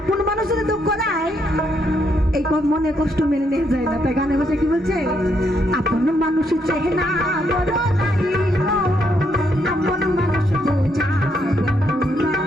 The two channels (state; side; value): normal; both; correlation 0.75